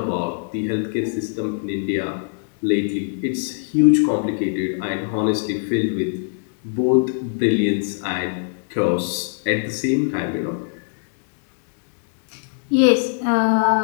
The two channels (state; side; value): silent; right; digital silence